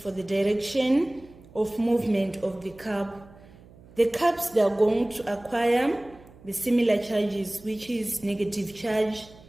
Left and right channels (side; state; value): right; noise; hum, 23 dB below the sound